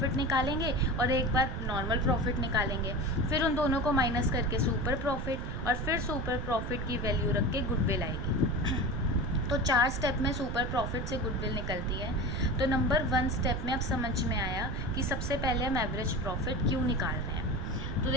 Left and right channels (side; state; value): right; noise; rumble, 5 dB below the sound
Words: निकालेंगे और एक बार नॉर्मल प्रॉफिट निकालेंगे, फिर उन दोनों को माइनस करके सुपर प्रॉफिट और फिर सुपर प्रॉफिट की वैल्यू रख के गुडविल आएगी. तो 4 स्टेप में सुपर प्रॉफिट से गुडविल निकलती है. तो नंबर 1 स्टेप में अब समझ में आया कि सबसे पहले हम एवरेज प्रॉफिट क्यों निकाल रहे हैं. तो